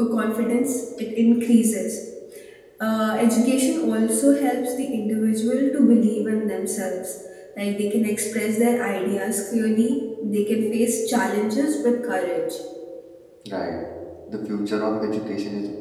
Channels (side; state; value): both; identical; correlation 1.00